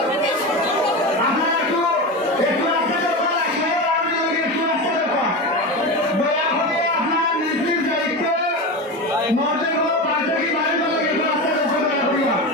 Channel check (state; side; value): normal; both; correlation 0.22